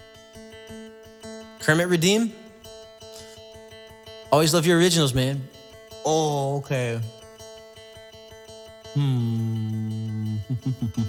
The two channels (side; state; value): both; identical; correlation 1.00